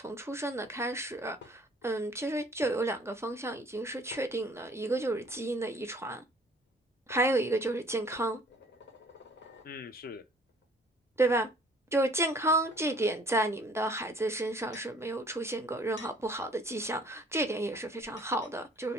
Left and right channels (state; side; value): normal; both; correlation 0.55